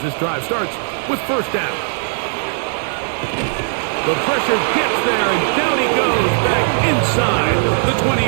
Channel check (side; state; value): left; silent; digital silence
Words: this drive starts with 1st down. The pressure gets there, and down he goes back inside the